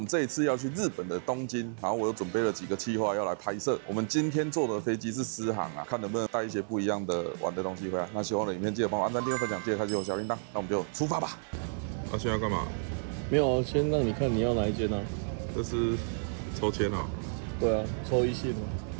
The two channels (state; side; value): silent; left; 57 dB below the other